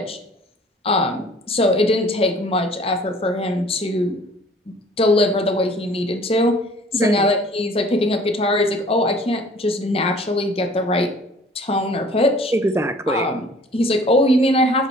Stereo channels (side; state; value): both; normal; correlation 0.52